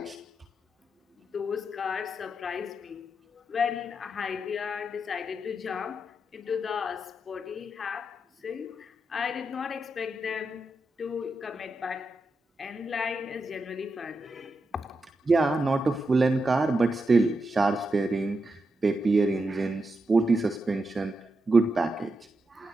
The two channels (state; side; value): normal; both; correlation 0.86